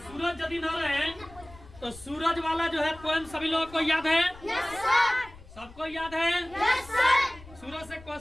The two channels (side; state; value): left; noise; rumble, 20 dB below the sound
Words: यदि न रहे तो सूरज वाला जो है पोएम सभी लोगों को याद है? yes, सबको याद है? yes, सूरज से